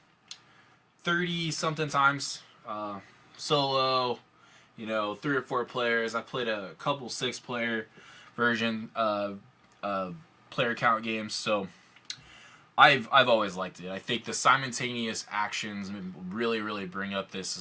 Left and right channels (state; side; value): identical; both; correlation 1.00